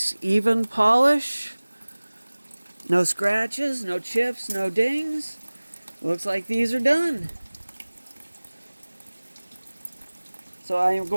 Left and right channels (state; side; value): inverted; both; correlation -1.00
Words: even polish. No scratches, no chips, no dings. Looks like these are done. So I am